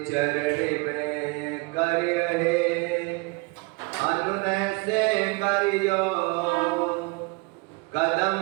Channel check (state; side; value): quieter; left; 28.2 dB